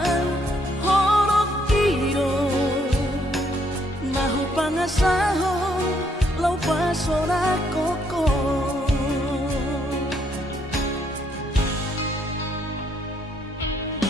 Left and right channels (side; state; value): both; normal; correlation 0.71